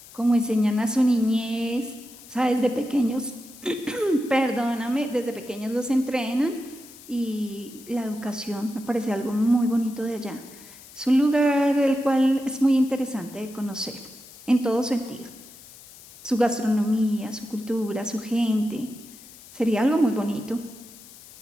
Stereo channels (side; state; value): left; noise; hiss, 20 dB below the sound